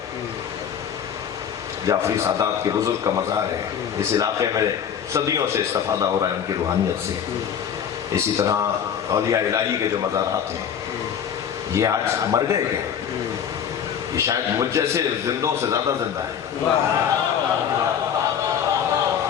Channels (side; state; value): right; quieter; 8.3 dB